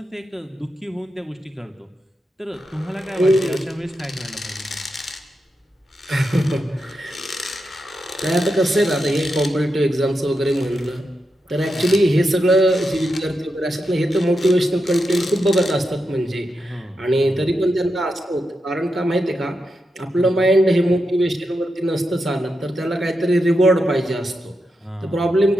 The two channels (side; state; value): both; normal; correlation 0.87